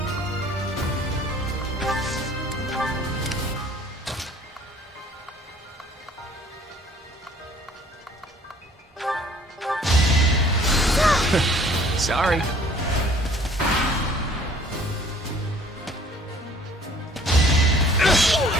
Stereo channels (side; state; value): both; normal; correlation 0.54